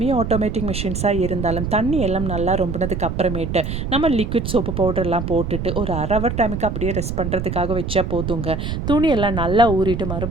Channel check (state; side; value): noise; right; rumble, 4 dB below the sound